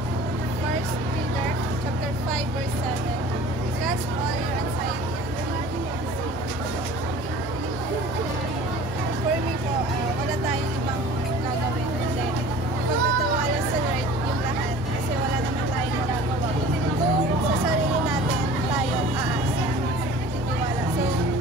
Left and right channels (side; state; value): both; normal; correlation 0.44